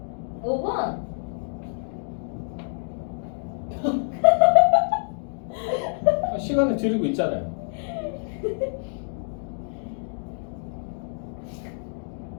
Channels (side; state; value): right; silent; digital silence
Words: 5번. 시간을 드리고 있잖아요.